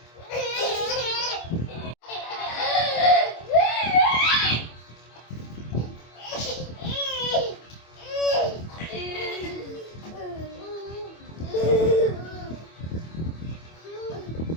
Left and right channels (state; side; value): late; right; 25 ms